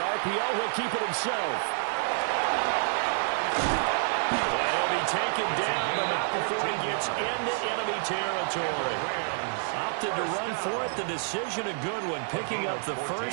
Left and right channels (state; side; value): silent; left; digital silence